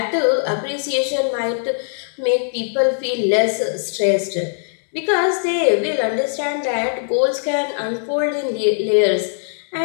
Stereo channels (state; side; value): silent; right; digital silence